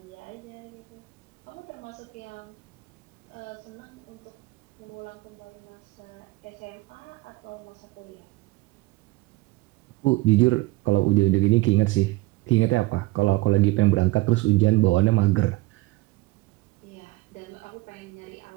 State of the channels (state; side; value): quieter; left; 20.5 dB